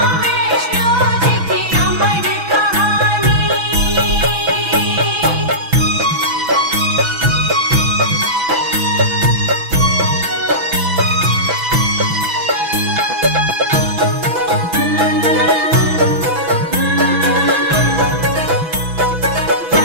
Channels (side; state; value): left; late; 6.1 ms